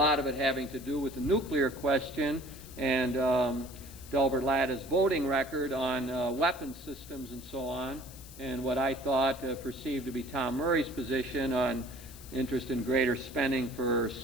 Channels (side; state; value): left; noise; hiss, 18 dB below the sound